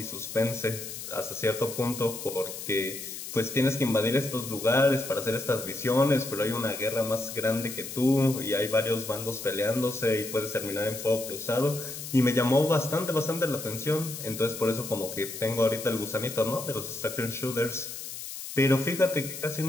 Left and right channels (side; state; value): left; noise; hiss, 9 dB below the sound